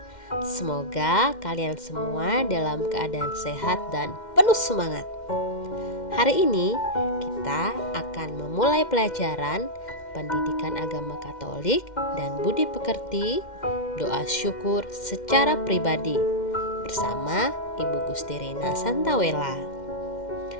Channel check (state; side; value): late; right; 2.1 ms